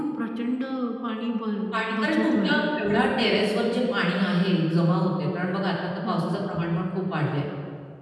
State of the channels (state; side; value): identical; both; correlation 1.00